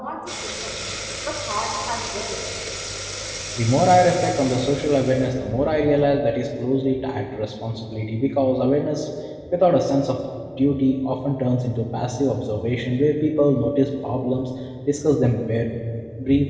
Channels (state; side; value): identical; both; correlation 1.00